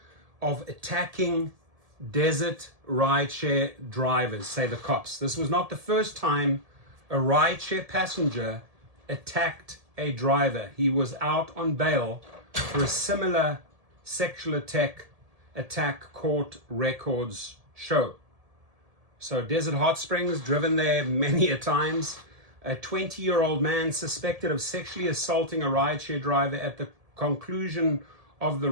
of attacking Desert rideshare drivers, say the cops. This was not the first time a rideshare passenger attacked a driver. He was out on bail for a similar sexual attack court records show. So Desert Hot Springs, driven there many a times. A 20-year-old man suspected of sexually assaulting a rideshare driver at the conclusion of the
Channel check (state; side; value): late; left; 1.7 ms